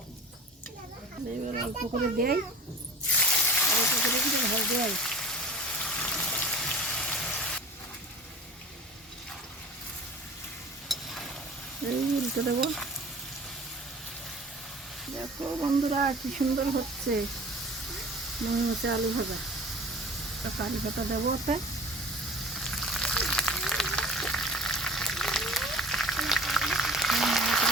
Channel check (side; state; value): both; normal; correlation 0.41